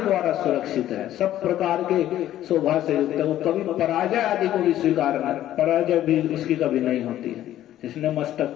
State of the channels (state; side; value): quieter; right; 12.8 dB